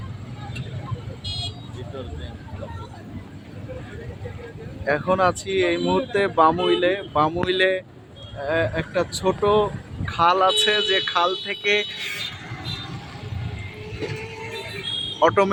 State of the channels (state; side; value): identical; both; correlation 1.00